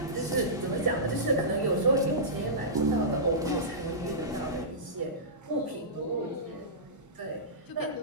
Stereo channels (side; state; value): both; normal; correlation -0.18